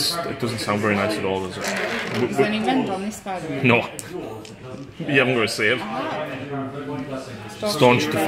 doesn't sound very nice at all, does it? Is there any rend on this, by the way? No. You haven't got a save. Staunch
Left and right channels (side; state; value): both; identical; correlation 1.00